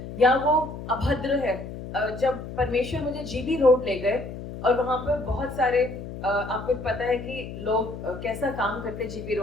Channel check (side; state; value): left; noise; hum, 10 dB below the sound